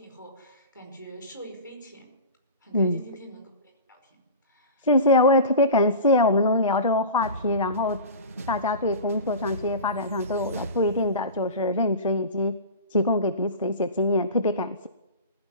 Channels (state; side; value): inverted; both; correlation -0.33